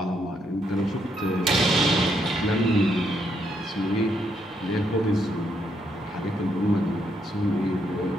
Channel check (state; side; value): normal; both; correlation 0.76